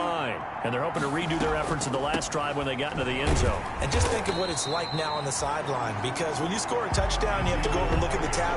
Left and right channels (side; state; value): both; identical; correlation 1.00